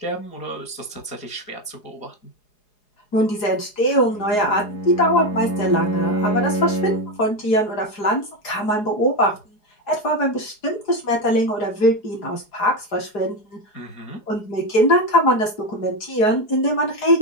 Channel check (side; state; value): right; late; 4.8 ms